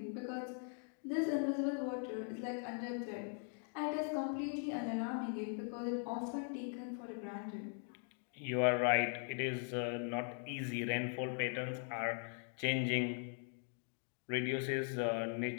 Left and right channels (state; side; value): silent; right; 51 dB below the other